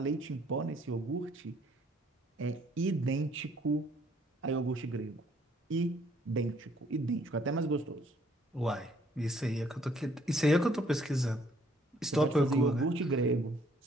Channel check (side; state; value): both; normal; correlation 0.64